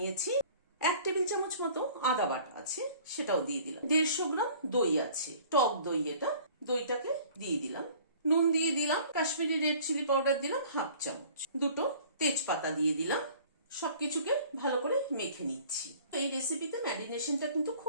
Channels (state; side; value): inverted; both; correlation -0.50